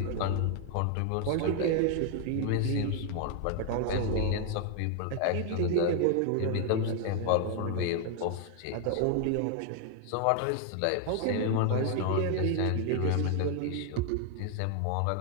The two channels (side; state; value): both; different; correlation 0.00